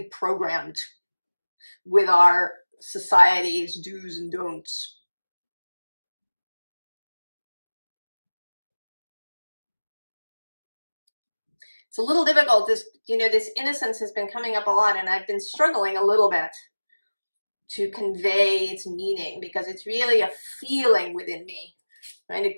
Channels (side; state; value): both; inverted; correlation -1.00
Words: programmed with our society's do's and don'ts. It's a little difficult. This, you know, this innocence has been coming up a lot, and I've been struggling a little bit to convey its meaning because it's really a feeling within me, and